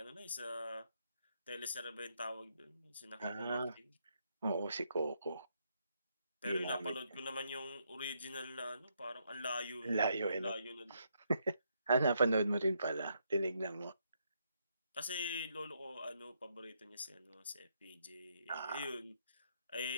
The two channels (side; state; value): both; inverted; correlation -0.76